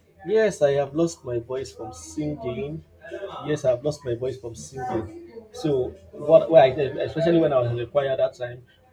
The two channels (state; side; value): identical; both; correlation 1.00